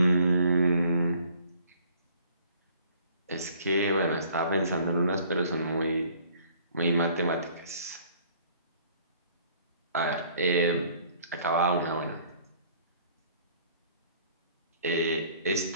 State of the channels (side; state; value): both; inverted; correlation -0.57